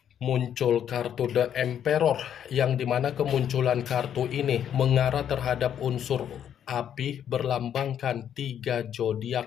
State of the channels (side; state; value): right; quieter; 9.4 dB